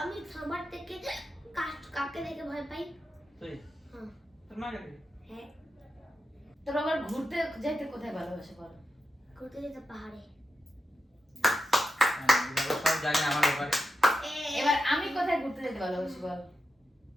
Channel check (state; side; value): normal; both; correlation 0.88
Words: সবার থেকে কাকে দেখে ভয় পাই? তুই হ্যাঁ। তোর মাকে দেখে? হ্যাঁ, তোর আবার ঘুরতে যাইতে কোথায় ভালোবাসে বল? ঘুরতে যেতে পাহাড়ে। দিবাকর সব জানে আমার ব্যাপারে। এবার আমি কোথায় ঘুরতে যেতে ভালোবাসি বল?